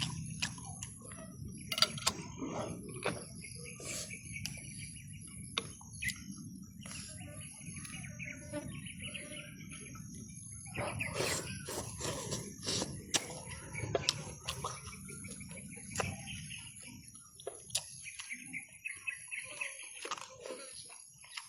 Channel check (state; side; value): identical; both; correlation 1.00